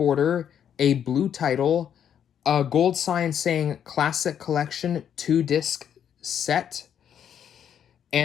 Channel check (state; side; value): quieter; right; 8.9 dB